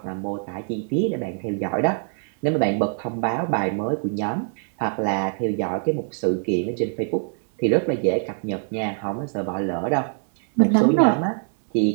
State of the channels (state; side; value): silent; left; 63 dB below the other